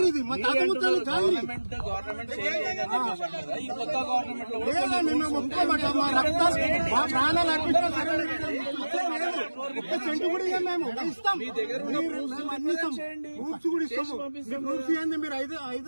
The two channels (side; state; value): both; inverted; correlation -1.00